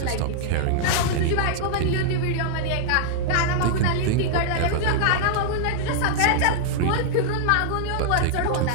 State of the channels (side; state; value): both; different; correlation -0.01